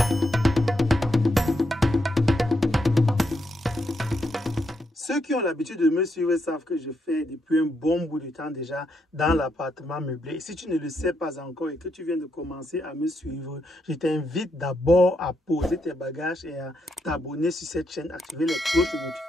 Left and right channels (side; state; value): both; normal; correlation 0.79